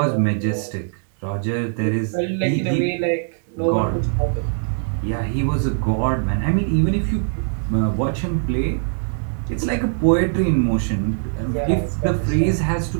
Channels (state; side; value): silent; left; digital silence